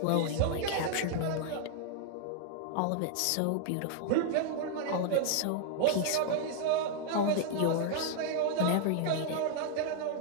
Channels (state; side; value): different; both; correlation 0.00